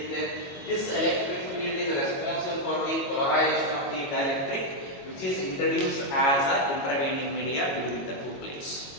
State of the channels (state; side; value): late; right; 22 ms